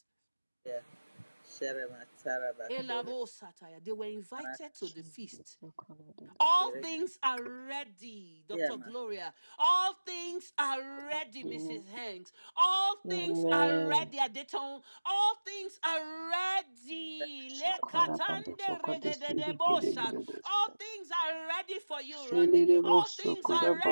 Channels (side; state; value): both; inverted; correlation -1.00